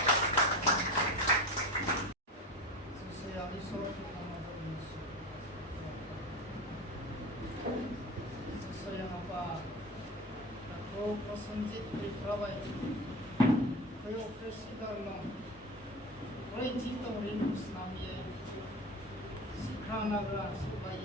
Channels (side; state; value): both; normal; correlation 0.28